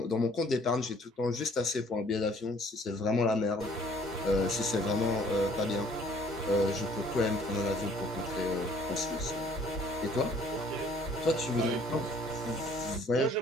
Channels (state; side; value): normal; both; correlation 0.59